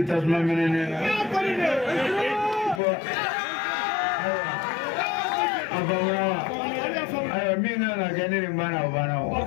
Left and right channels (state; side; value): drops out; right; at 2.8 s